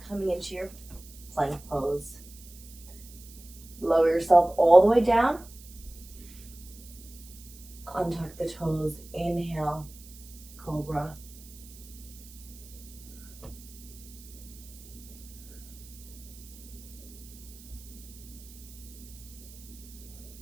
coming into your plank pose. Lower yourself all the way down. Untuck the toes, inhale, cobra.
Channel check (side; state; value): right; noise; hiss, 19 dB below the sound